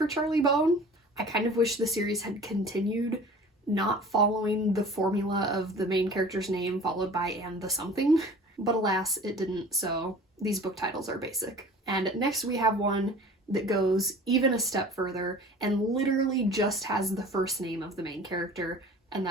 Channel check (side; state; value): both; normal; correlation 0.43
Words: Charlie Bone. I kind of wish the series had continued not following the formula of the main character's name followed by and the something, but alas, it didn't, so these book titles are basic. And next we have one that goes even a step further and literally just has the first name of the main character, and